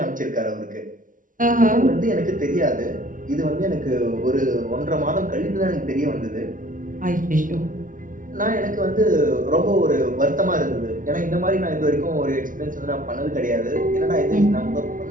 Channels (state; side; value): late; left; 0.38 ms